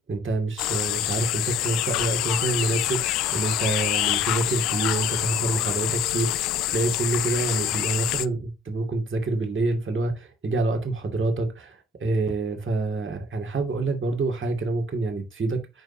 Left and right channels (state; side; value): normal; both; correlation 0.56